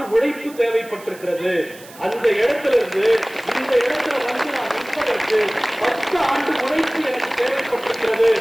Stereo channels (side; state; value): right; noise; hiss, 20 dB below the sound